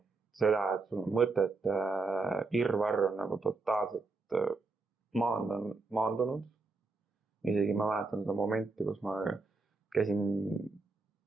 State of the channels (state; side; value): quieter; left; 3.7 dB